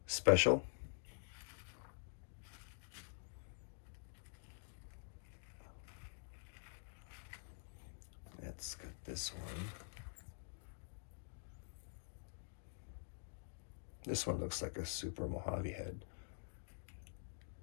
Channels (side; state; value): right; silent; digital silence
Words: special. Let's cut this one. This one looks like a super Mojave head.